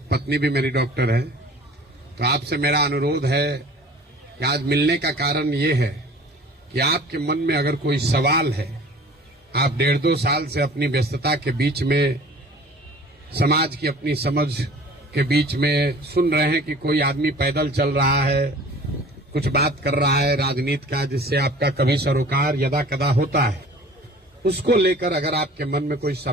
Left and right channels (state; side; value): normal; both; correlation 0.46